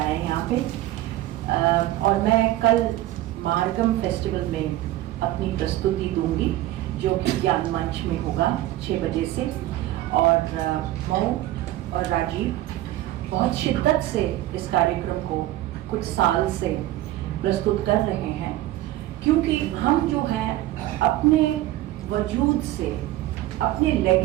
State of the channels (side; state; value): left; quieter; 15.3 dB